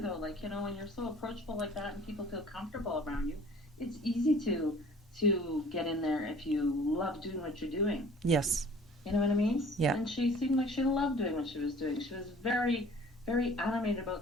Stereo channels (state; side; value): normal; both; correlation 0.50